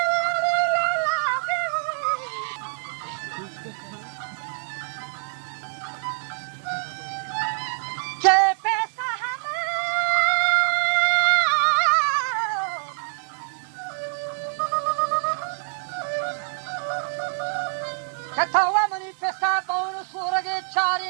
के पैसा हम कथावा मनी पैसा बाउन सूरगे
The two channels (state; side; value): silent; left; digital silence